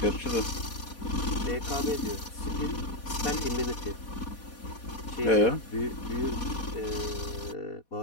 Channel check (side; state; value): right; late; 4.2 ms